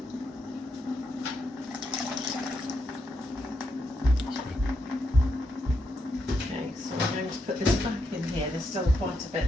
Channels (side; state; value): both; normal; correlation 0.81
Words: Okay, so I'm going to put this back in here. There's still quite a